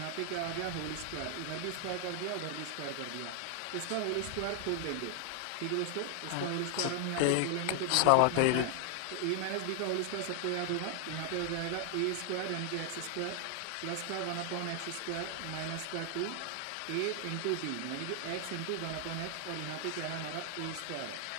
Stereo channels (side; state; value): both; different; correlation 0.00